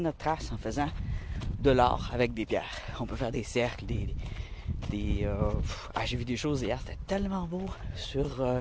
trace en faisant de l'art avec des pierres. On peut faire des cercles, j'ai vu des choses hier, c'était tellement beau sur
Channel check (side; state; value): both; identical; correlation 1.00